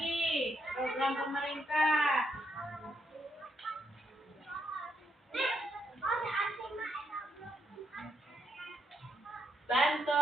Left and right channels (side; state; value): both; normal; correlation 0.77